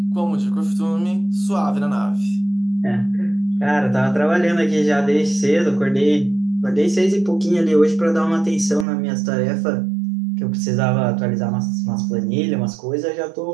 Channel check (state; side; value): drops out; left; at 8.8 s